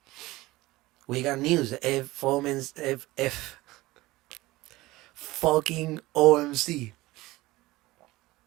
We got news. F fucking OMC.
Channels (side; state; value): left; quieter; 19.0 dB